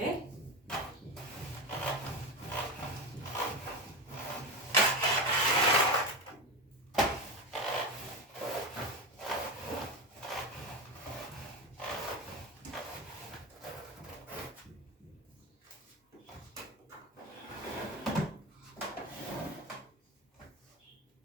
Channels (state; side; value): normal; both; correlation 0.20